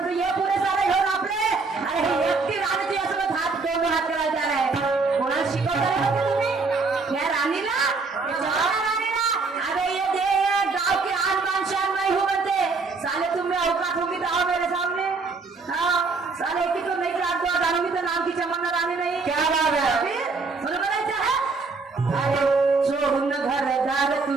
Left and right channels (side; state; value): left; quieter; 4.2 dB